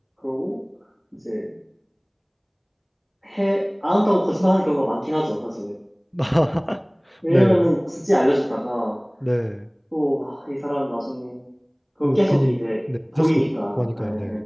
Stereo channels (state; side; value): identical; both; correlation 1.00